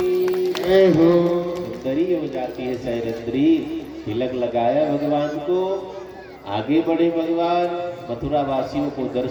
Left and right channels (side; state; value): both; identical; correlation 1.00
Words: जय हो। सुंदरी हो जाती है सैरंद्री। तिलक लगाया भगवान को, आगे बढ़े भगवान। मथुरा वासियों को